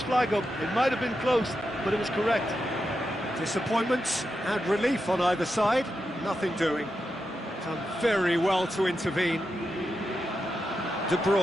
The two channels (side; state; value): both; normal; correlation 0.87